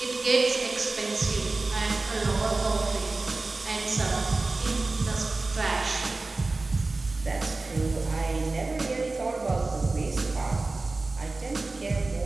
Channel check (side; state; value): left; quieter; 3.4 dB